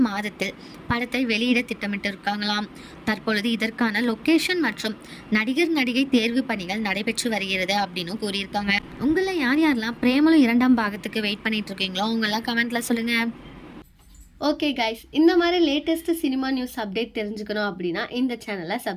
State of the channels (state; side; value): identical; both; correlation 1.00